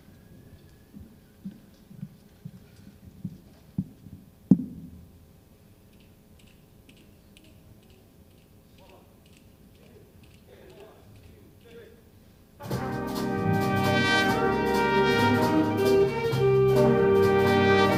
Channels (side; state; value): both; identical; correlation 1.00